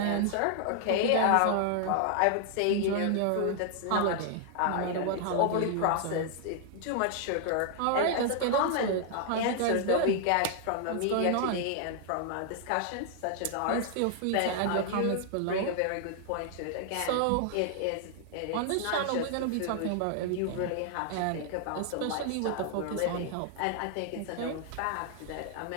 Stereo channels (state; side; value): different; both; correlation 0.00